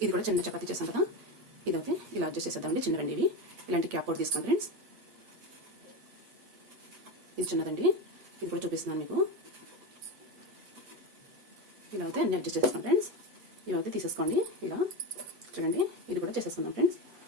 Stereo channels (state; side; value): late; left; 8.4 ms